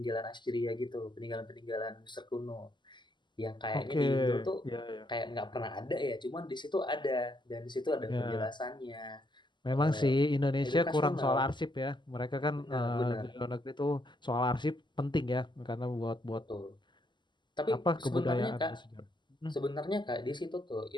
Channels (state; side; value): late; right; 0.22 ms